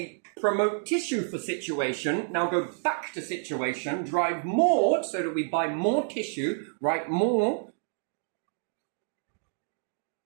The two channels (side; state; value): left; silent; digital silence